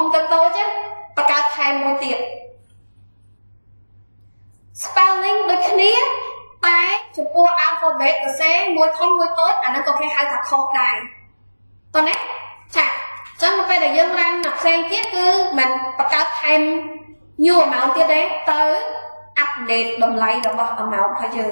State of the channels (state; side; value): inverted; both; correlation -1.00